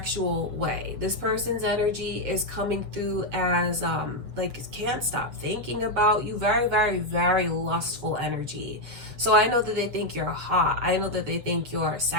way. This person's energy is coming through as like, can't stop thinking about you. Very, very, very lustful energy. So I know that they think you're hot. I know that they think you're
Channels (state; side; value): late; left; 7.3 ms